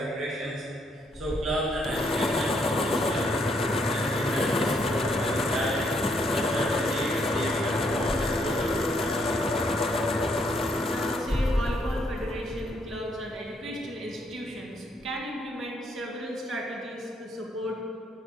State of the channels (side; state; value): both; normal; correlation 0.72